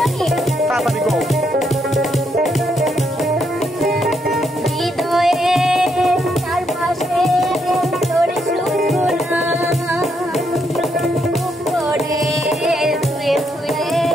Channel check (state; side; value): normal; both; correlation 0.77